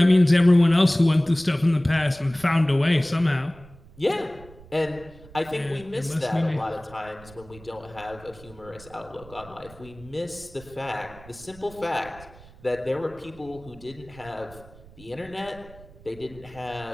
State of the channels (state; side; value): noise; right; rumble, 21 dB below the sound